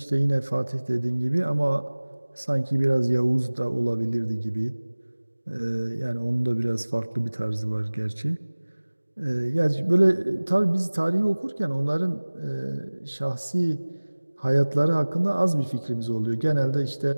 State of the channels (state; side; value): inverted; both; correlation -1.00